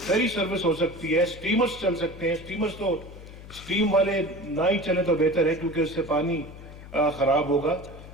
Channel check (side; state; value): left; noise; hum, 16 dB below the sound